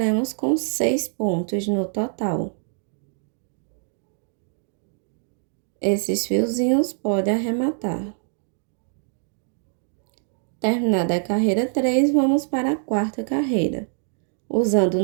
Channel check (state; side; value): silent; left; 56 dB below the other